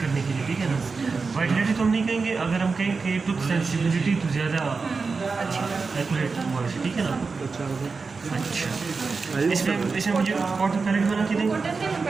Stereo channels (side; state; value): left; quieter; 4.5 dB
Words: करने के लिए, ठीक है ना। वाइटलिटी तो हम नहीं कहेंगे, अगर हम कहें कि टूथ सेंसिटिविटी तो ज़्यादा एक्यूरेट हुआ है, ठीक है ना। अच्छा, इसमें मुझे कॉटन पैलेट बना के देंगे,